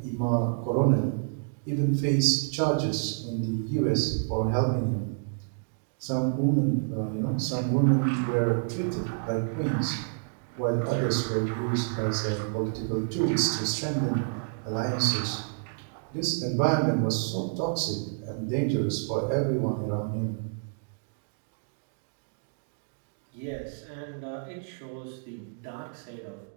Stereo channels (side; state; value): left; silent; digital silence